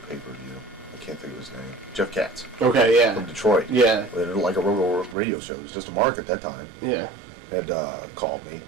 pay-per-view. I can't think of his name. Jeff Katz. Okay, yeah. From Detroit. Yeah. They did like a radio show. It was just a Mark at that time. Yeah. Had called me.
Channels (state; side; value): drops out; left; at 5.2 s